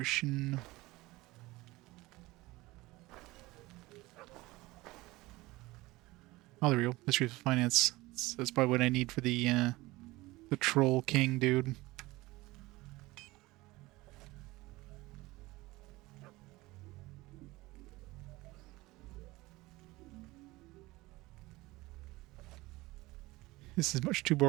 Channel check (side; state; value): left; quieter; 20.4 dB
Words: Oh, there we go. Mystery of Finance. That's probably what I need for the Troll King dude. This is much too